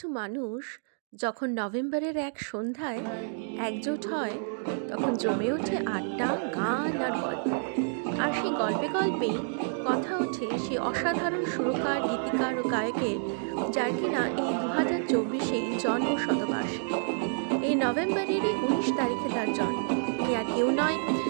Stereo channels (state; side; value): silent; left; digital silence